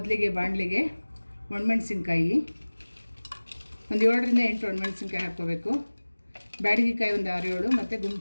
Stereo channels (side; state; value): both; inverted; correlation -1.00